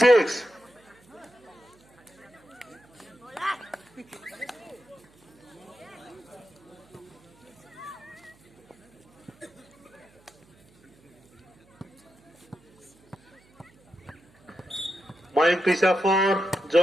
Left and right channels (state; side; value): noise; right; hum, 30 dB below the sound